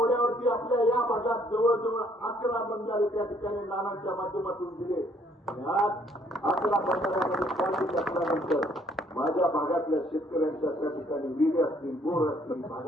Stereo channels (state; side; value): normal; both; correlation 0.64